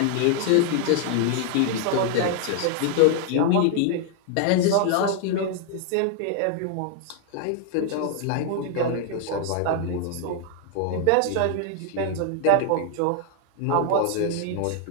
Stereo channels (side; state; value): both; different; correlation 0.00